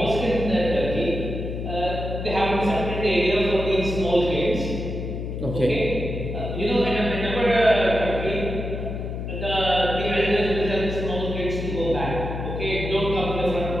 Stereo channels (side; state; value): left; noise; hum, 5 dB below the sound